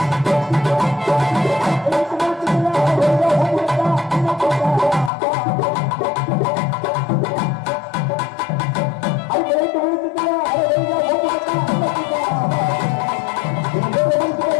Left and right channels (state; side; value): drops out; right; at 5.1 s